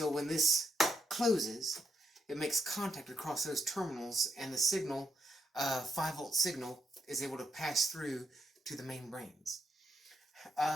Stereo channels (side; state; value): both; normal; correlation 0.79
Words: when this closes, it makes contact across those terminals, and the signal, 5-volt signal, is able to pass through to the main brains.